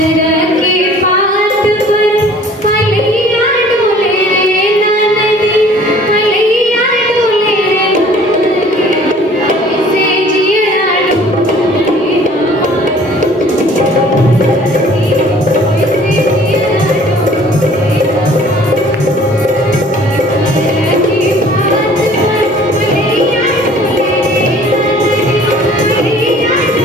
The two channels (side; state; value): both; normal; correlation 0.52